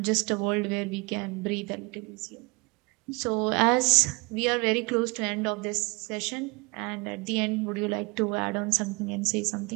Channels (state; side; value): quieter; left; 27.7 dB